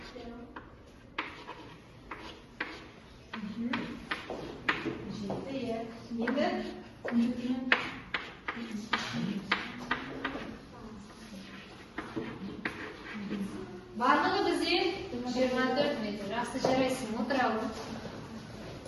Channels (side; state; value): both; identical; correlation 1.00